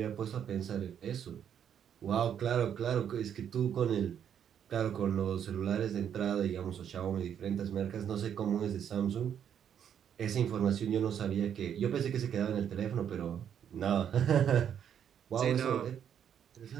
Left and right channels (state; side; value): quieter; left; 8.9 dB